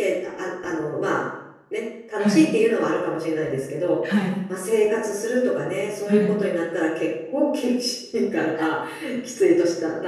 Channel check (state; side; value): identical; both; correlation 1.00